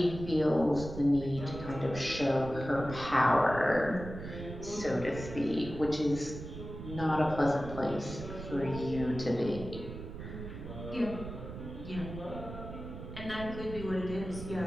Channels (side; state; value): right; noise; rumble, 10 dB below the sound